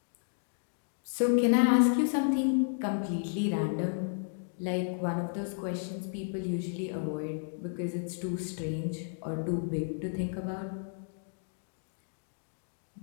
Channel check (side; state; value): right; silent; digital silence